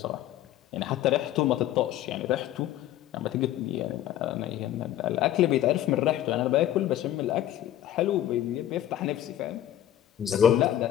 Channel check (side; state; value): right; quieter; 12.3 dB